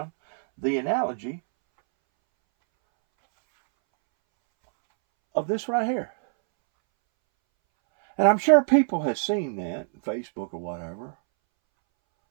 the analogy of this right here. And I'm sure people have seen that on Facebook or whatever,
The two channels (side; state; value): left; silent; 62 dB below the other